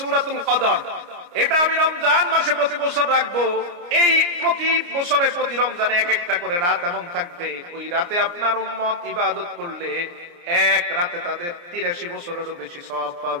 কদর। এটা আমি রমজান মাসে প্রতি বছর রাখবো। এই প্রতি বছরে প্রতি রমজানে এক একটা করে রাত এমন থাকবে, ওই রাতে আপনার উম্মত ইবাদত করলে এক রাতে তাদের 83 বছরেরও বেশি সওয়াব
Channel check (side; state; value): left; late; 29 ms